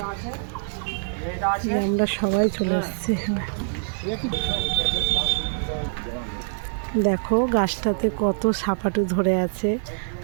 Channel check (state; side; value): silent; left; digital silence